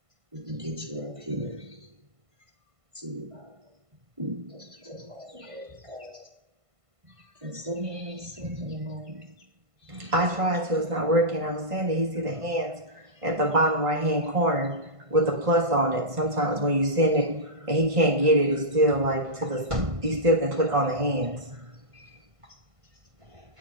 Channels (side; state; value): left; late; 1.5 ms